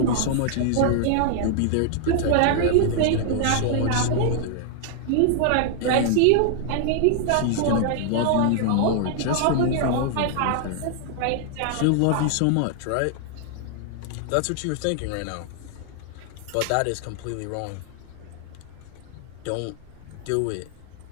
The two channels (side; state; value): both; different; correlation 0.00